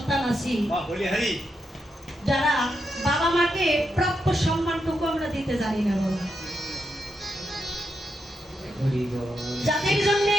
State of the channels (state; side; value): normal; both; correlation 0.83